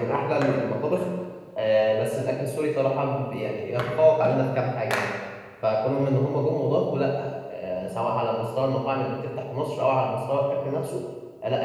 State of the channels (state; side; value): identical; both; correlation 1.00